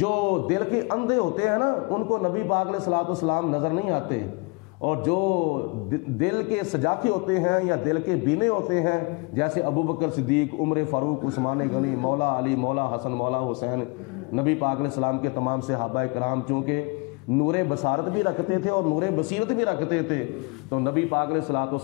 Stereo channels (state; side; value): quieter; right; 29.9 dB